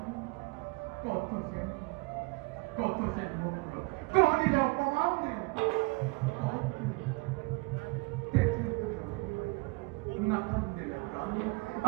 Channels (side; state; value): left; quieter; 27.1 dB